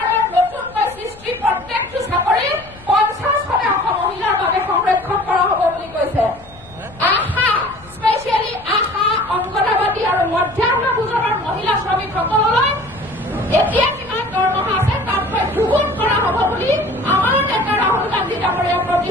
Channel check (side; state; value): left; noise; rumble, 22 dB below the sound